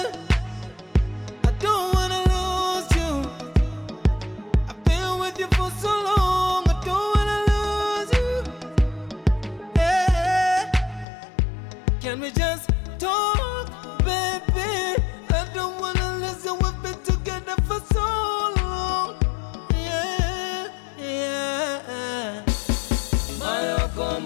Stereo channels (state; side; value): drops out; right; at 11.1 s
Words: I don't wanna lose you. I've been with you for so long. I don't wanna lose you. Yeah, can we just talk, baby? I don't wanna listen. We've been together for so long. Yeah, yeah. Mayo